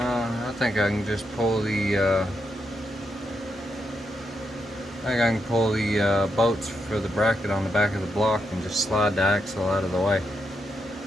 I think I can just pull the bolts for the bracket on the back of the block and just slide the axle out of the way.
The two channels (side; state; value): both; normal; correlation 0.82